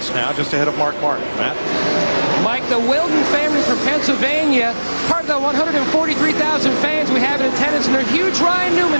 now, just ahead of Mark Martin. Matt? Mike, the Wilden family from Pennsylvania, part of the 143,000 fans we have in attendance, and they're huge Ryan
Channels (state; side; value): inverted; both; correlation -1.00